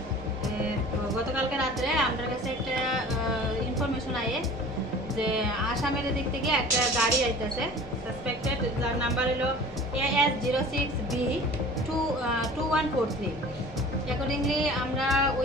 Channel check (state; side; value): normal; both; correlation 0.43